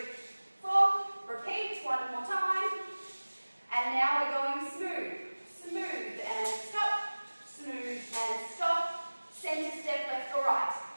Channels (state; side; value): inverted; both; correlation -1.00